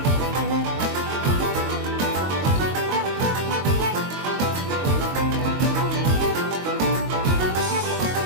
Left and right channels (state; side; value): late; left; 22 ms